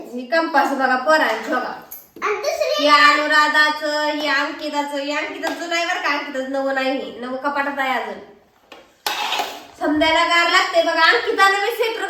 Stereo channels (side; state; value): both; identical; correlation 1.00